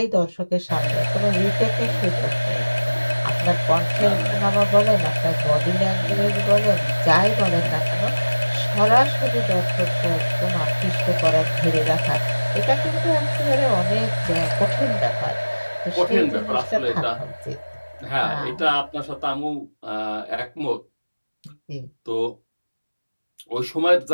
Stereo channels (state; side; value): inverted; both; correlation -1.00